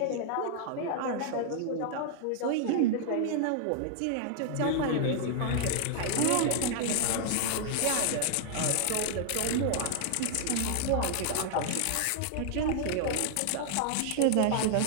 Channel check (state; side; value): different; both; correlation 0.00